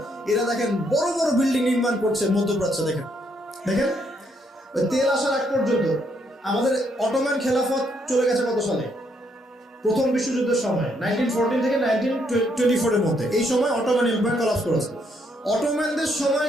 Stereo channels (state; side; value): normal; both; correlation 0.73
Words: এরা দেখেন বড় বড় বিল্ডিং নির্মাণ করছে মধ্যপ্রাচ্যে। দেখেন দেখেন ওই তেল আসার আগ পর্যন্ত আমাদের অটোম্যান খেলাফত চলে গেছে কত সালে? প্রথম বিশ্বযুদ্ধের সময়, 1914 থেকে 1924 এর মধ্যে। এই সময় অটোম্যান এম্পায়ার কলাপস করেছে। অটোম্যানদের সময়